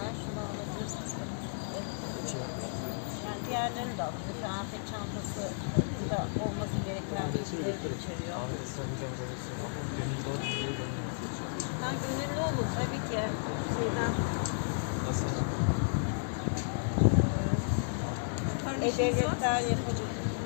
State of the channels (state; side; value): silent; right; digital silence